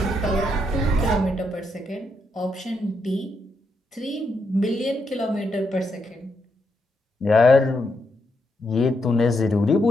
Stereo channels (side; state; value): both; normal; correlation 0.80